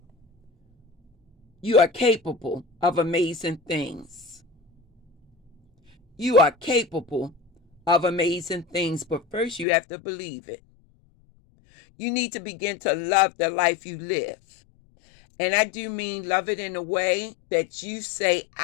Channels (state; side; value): drops out; right; at 9.7 s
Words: you are capable of amazing things. You are capable of amazing things, but first you have to believe it. You need to begin to love the life you live. And I do mean love it in a way that you say,